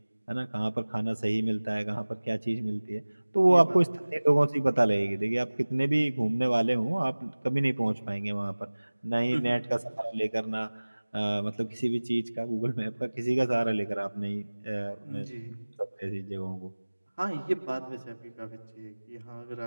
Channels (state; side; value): inverted; both; correlation -1.00